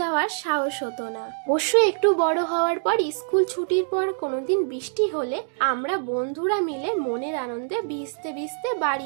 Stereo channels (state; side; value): silent; left; digital silence